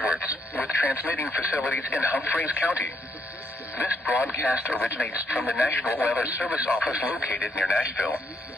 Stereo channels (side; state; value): both; normal; correlation 0.75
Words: with transmitting facilities in Humphreys County. This broadcast originates from the National Weather Service office located near Nashville.